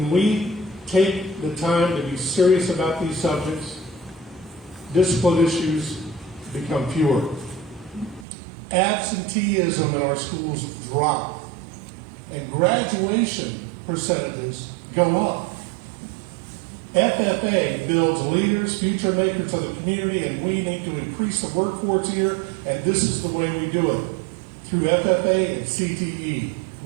we take the time to be serious about these subjects, discipline issues become fewer. Absenteeism in our schools drop, and graduation percentages go up. FFA builds leaders, future makers of the community, and we need to increase the workforce here, and this is the way we do it. Through FFA and CTE,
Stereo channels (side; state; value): left; drops out; at 8.2 s